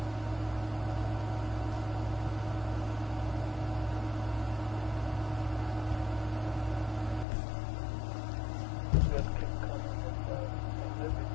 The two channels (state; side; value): drops out; right; at 7.2 s